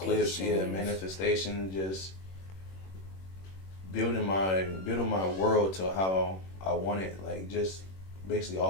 manifestation, just building my world to how I want it, like just basically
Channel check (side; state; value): right; late; 21 ms